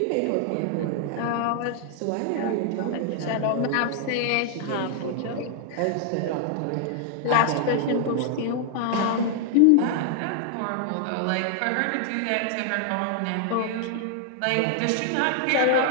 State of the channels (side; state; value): both; different; correlation 0.00